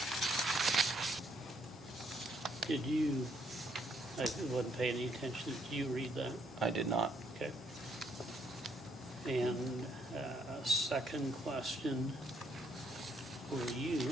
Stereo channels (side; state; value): both; normal; correlation 0.71